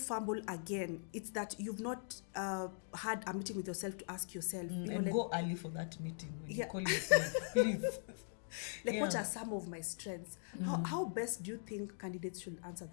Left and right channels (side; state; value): right; silent; digital silence